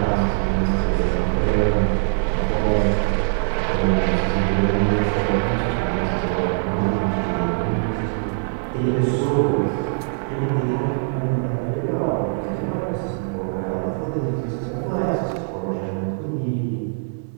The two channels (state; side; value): silent; left; 64 dB below the other